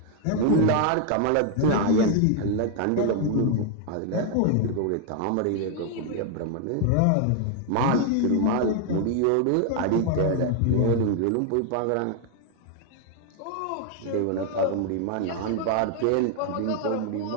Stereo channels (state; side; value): different; both; correlation 0.00